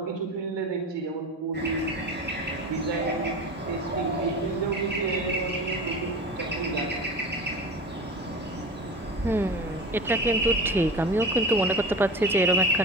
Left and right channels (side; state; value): both; normal; correlation 0.31